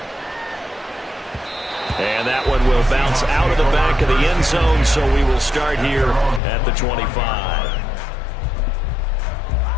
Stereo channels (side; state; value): right; drops out; at 6.4 s